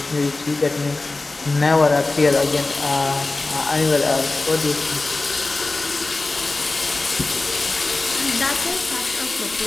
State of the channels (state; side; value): quieter; right; 3.3 dB